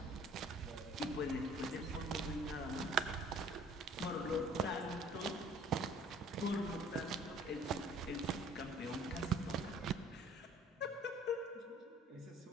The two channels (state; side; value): normal; both; correlation 0.53